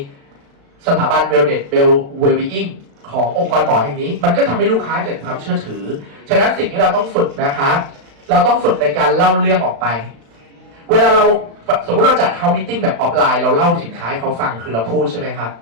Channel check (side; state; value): left; late; 35 ms